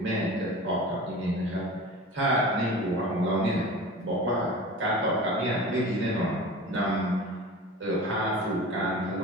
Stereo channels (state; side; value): normal; both; correlation 0.36